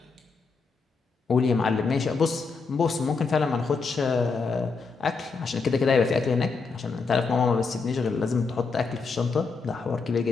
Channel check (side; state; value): right; quieter; 4.6 dB